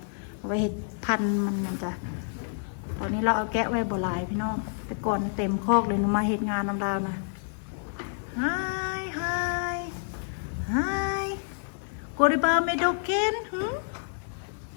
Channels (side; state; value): right; silent; digital silence